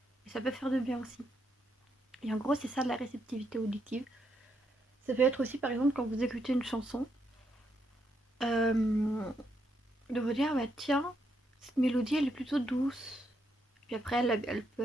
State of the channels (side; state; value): both; normal; correlation 0.78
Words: Et ça peut faire de bien aussi. Et en gros, c'est ça de la réceptivité auditive. Ça peut être aussi, par exemple, quand vous écoutez une chanson, de vous dire, bah tiens, cette mélodie, elle est plutôt douce. Puis après, elle